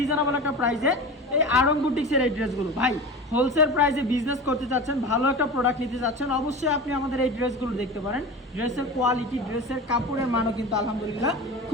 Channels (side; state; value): both; normal; correlation 0.31